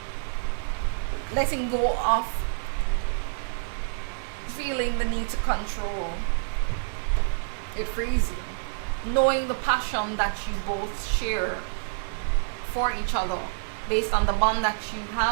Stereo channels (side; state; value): left; silent; digital silence